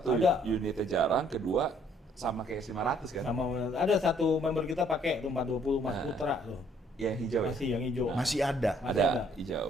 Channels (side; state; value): both; normal; correlation 0.64